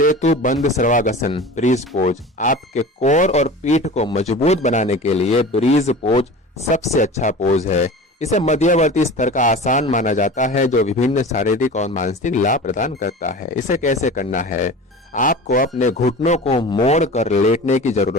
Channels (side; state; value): both; normal; correlation 0.35